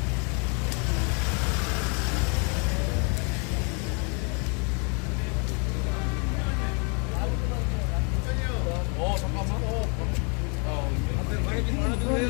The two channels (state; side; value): quieter; right; 35.8 dB